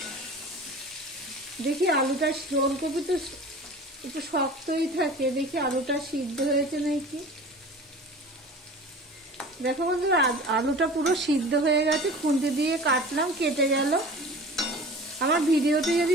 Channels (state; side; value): normal; both; correlation 0.40